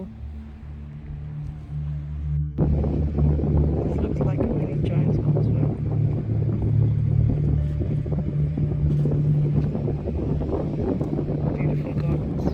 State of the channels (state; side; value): identical; both; correlation 1.00